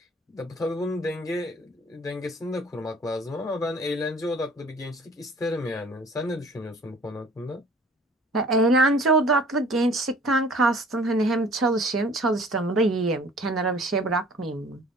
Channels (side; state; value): both; normal; correlation 0.51